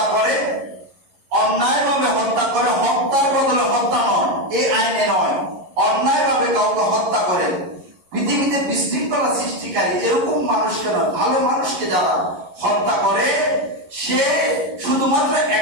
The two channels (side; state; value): left; late; 11 ms